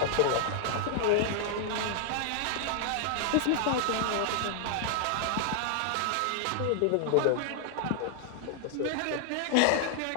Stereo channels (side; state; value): both; different; correlation 0.00